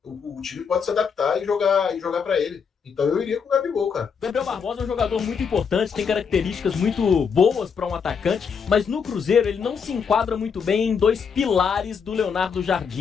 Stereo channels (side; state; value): right; quieter; 6.3 dB